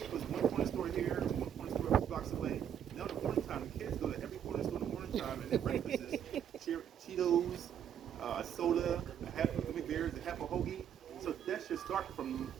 one corner store here, one corner store a few blocks away. Now in the morning time, the kids go to every corner store in the morning time, and their breakfast is Cheetos, soda, a half of gummy bears, a half a hoagie. So that should start from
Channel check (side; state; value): left; quieter; 9.2 dB